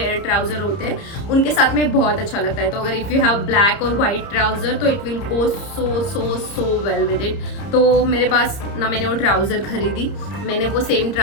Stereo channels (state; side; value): late; right; 30 ms